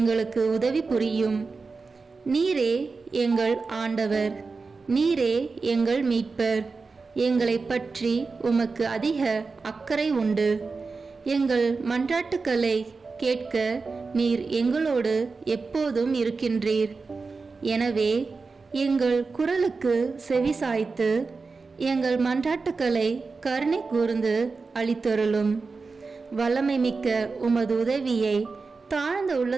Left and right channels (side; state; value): left; quieter; 4.3 dB